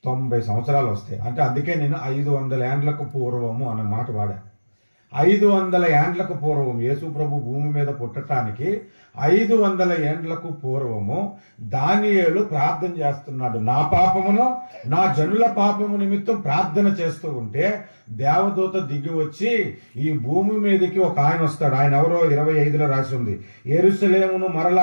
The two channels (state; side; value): inverted; both; correlation -1.00